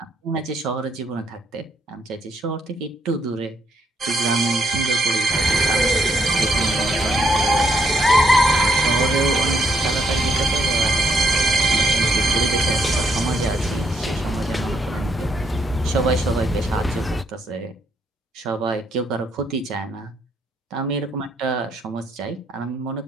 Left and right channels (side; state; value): both; normal; correlation 0.74